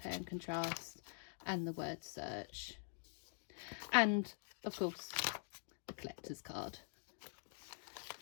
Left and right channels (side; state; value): right; silent; digital silence